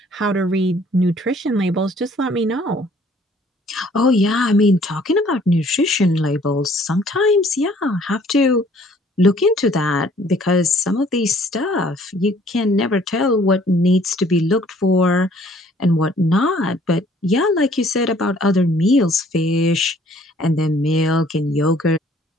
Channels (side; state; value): both; normal; correlation 0.58